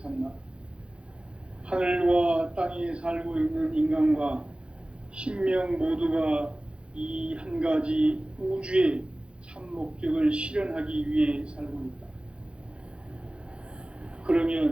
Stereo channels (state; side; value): late; left; 0.057 ms